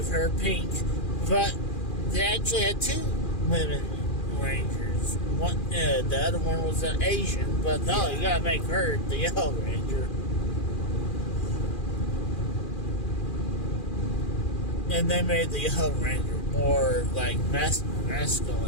her pink. But they actually had two women Rangers. One, the other one was an Asian. But no, you gotta make her the Yellow Ranger. And they made the Yellow Ranger more like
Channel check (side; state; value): right; late; 2.4 ms